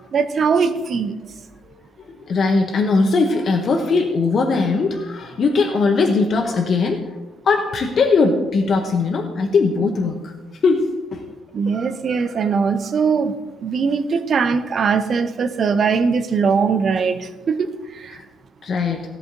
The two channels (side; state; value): both; normal; correlation 0.75